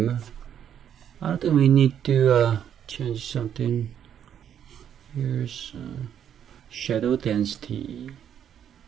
I don't think we need to change something. Here's shadow density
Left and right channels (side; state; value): left; quieter; 9.2 dB